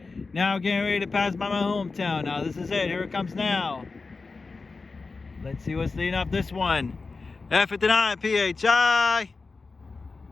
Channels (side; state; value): right; quieter; 4.1 dB